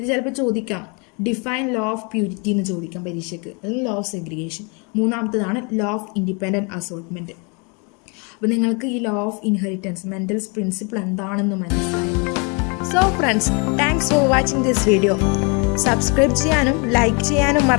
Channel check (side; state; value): right; quieter; 33.1 dB